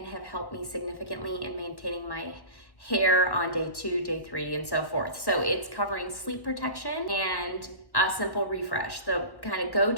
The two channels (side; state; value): right; late; 1.1 ms